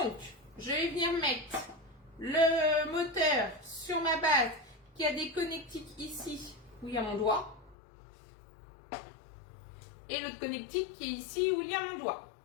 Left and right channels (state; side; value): drops out; right; at 7.8 s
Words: je vais venir mettre le moteur sur ma base qui a des connectiques ici où il y a mon doigt. Et l'autre connectique qui est ici où il y a mon doigt.